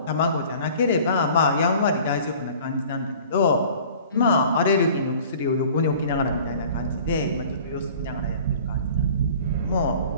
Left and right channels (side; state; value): both; inverted; correlation -0.47